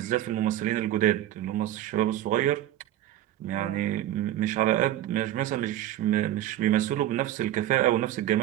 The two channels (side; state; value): left; quieter; 13.1 dB